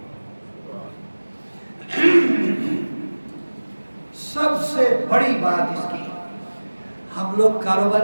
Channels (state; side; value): inverted; both; correlation -1.00